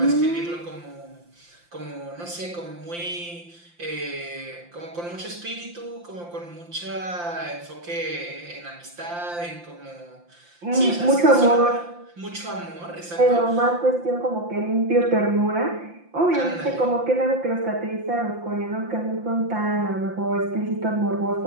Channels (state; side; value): late; left; 5.8 ms